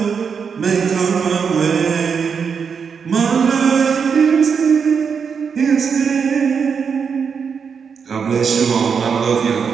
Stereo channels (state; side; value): quieter; left; 6.3 dB